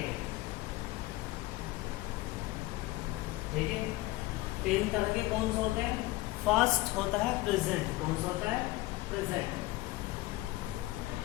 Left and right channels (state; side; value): quieter; right; 18.9 dB